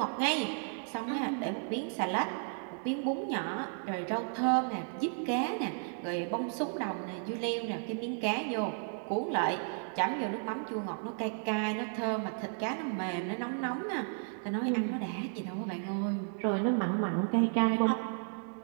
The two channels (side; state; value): left; silent; 55 dB below the other